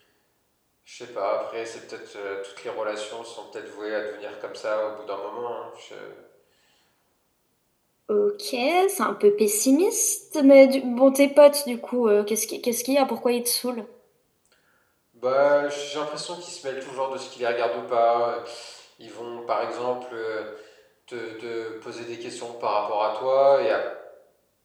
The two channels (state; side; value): identical; both; correlation 1.00